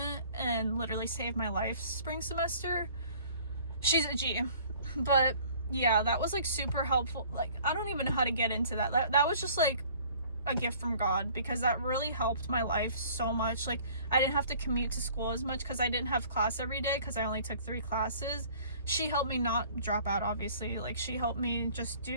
and literally saved my life spring semester. She's a G. But yeah, that was like super helpful. Like, I don't even know how to get into that. That was just like a gift from God, because that really helped my life so much. Like, I didn't have to commute to school as much because I didn't have class every day, because I only took 3 classes. She helped me not drop out, obviously. Like, she helped me just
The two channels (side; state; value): both; inverted; correlation -0.52